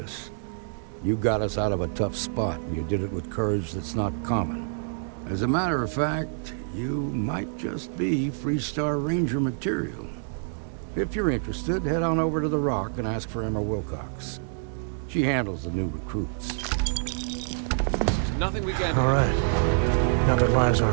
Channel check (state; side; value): silent; left; digital silence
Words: You got us out of a tough spot, and you did it with courage that's not common. As a matter of fact, you might just be Freestar Ranger material. If you're interested, head on over to the Rock and ask for Emma Wilcox. She handles the new recruits. Nothing we can do. All right. Now that lives